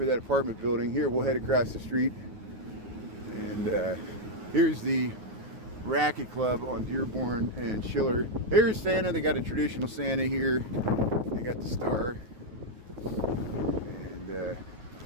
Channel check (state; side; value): late; left; 9.5 ms